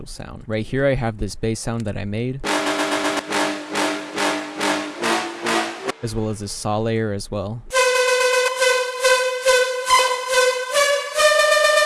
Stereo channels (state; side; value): identical; both; correlation 1.00